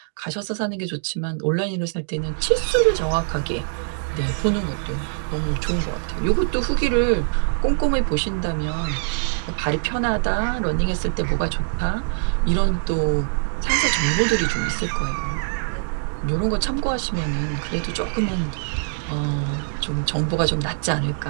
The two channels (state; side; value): silent; left; digital silence